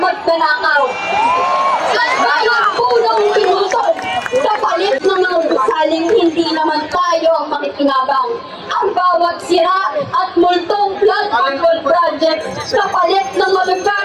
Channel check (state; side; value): identical; both; correlation 1.00